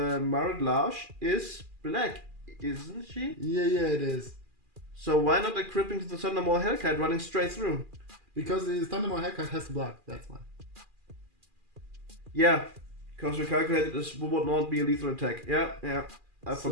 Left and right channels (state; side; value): late; left; 2.4 ms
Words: Lodge is black, isn't she? Yeah, it is. So why not equipping to the Thundermaw Hellkite running straight through? Because the Thundermaw Hellkite has to block, that's why. Yeah, because we calculated this would not be a lethal attack. Yeah, I